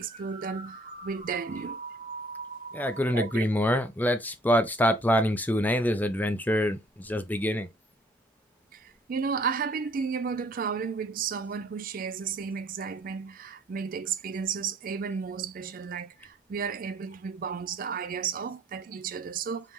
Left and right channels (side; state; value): both; normal; correlation 0.58